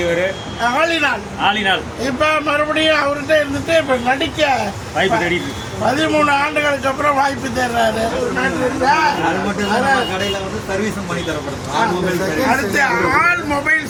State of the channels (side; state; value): both; identical; correlation 1.00